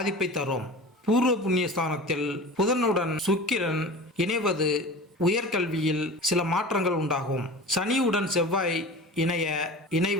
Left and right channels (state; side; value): normal; both; correlation 0.36